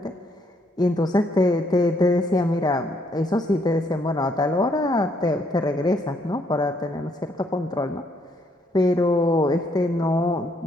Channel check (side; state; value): both; normal; correlation 0.71